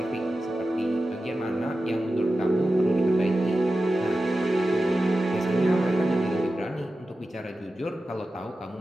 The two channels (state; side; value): normal; both; correlation 0.93